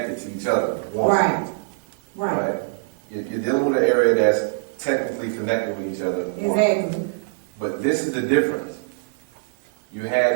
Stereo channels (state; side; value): silent; left; digital silence